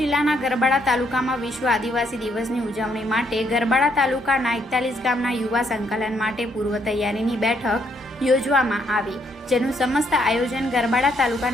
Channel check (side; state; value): both; normal; correlation 0.72